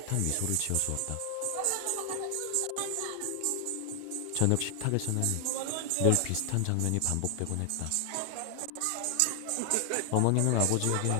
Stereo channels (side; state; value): both; different; correlation 0.00